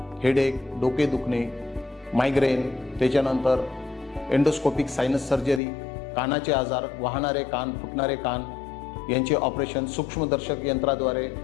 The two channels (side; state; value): right; drops out; at 5.6 s